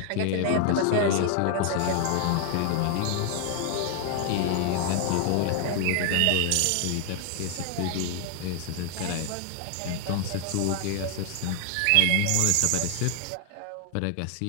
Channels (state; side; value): different; both; correlation 0.00